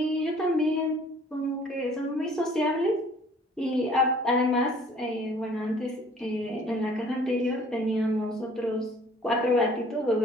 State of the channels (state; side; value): normal; both; correlation 0.54